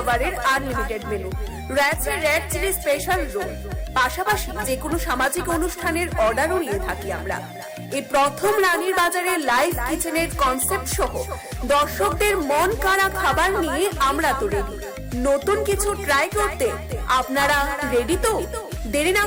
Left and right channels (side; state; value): both; identical; correlation 1.00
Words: আনলিমিটেড মেনু, রয়েছে র্যাক চিলি স্পেশাল রোল, পাশাপাশি যে কোনো সামাজিক অনুষ্ঠানের অর্ডারও নিয়ে থাকি আমরা। এই প্রথম রানীর বাজারে লাইভ কিচেনের কনসেপ্ট সহ দর্শকদের মন কাড়া খাবার নিয়ে আমরা তো রেডি। নতুন কিছু ট্রাই করতে আপনারা রেডি তো? দেরি না